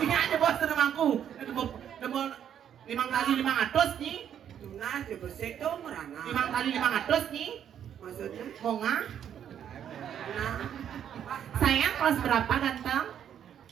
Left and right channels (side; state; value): left; quieter; 9.3 dB